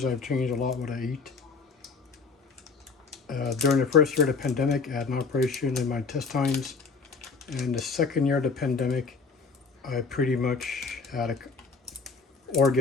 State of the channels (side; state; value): right; quieter; 4.7 dB